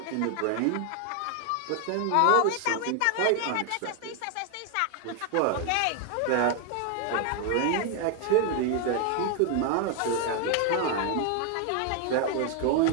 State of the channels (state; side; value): different; both; correlation 0.00